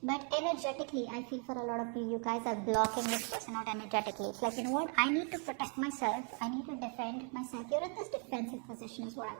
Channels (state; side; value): quieter; left; 39.2 dB